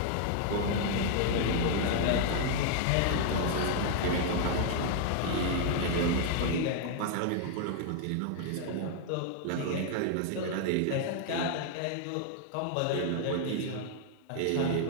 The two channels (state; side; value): different; both; correlation 0.00